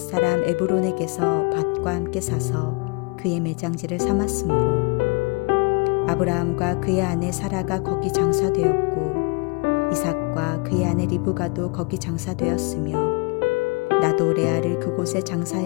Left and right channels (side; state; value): right; quieter; 29.6 dB